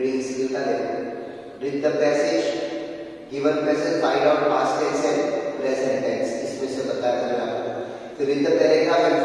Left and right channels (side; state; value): both; identical; correlation 1.00